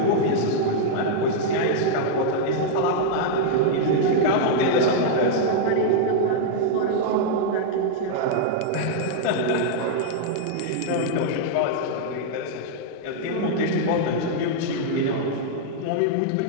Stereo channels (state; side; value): different; both; correlation -0.01